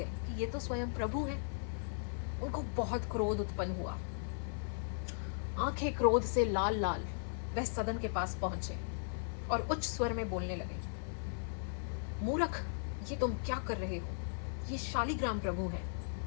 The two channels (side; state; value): right; silent; 53 dB below the other